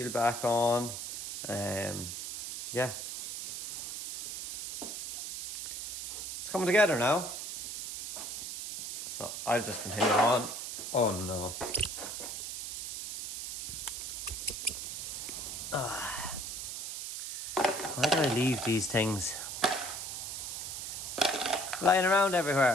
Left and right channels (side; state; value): right; noise; hiss, 6 dB below the sound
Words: back on. Yeah, it's coming together now. So I'll just continue on. Oh no. Why do I leave these things lying around